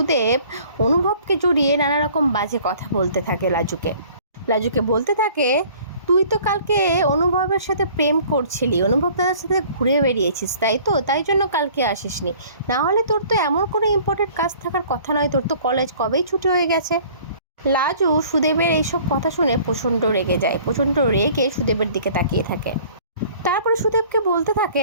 অনুভবকে জড়িয়ে নানা রকম বাজে কথা বলতে থাকে। লাজুকে বলতে থাকে, তুই তো কালকে অনুভবের সাথে প্রেম করছিলি, অনুভব দাদার সাথে ঘুরে বেরিয়েছিস, তাই তো, তাই জন্য কালকে আসিসনি। না হলে তোর তো এমন কোনো ইম্পর্টেন্ট কাজ থাকার কথা নয়, তোর তো কলেজ কবেই ছুটি হয়ে গেছে। লাজু সুদেবের এইসব কথা শুনে প্রচণ্ড রেগে যায়, প্রচণ্ড রেগে সুদেবের দিকে তাকিয়ে থাকে। তারপরে সুদেবকে বলতে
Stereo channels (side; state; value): both; inverted; correlation -0.51